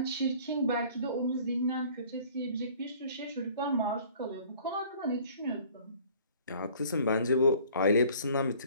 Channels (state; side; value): inverted; both; correlation -0.52